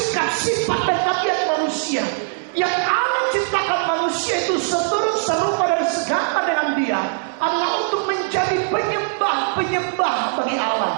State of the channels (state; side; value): silent; left; digital silence